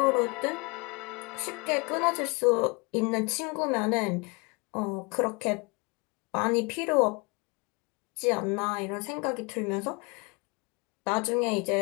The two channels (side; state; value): right; quieter; 29.9 dB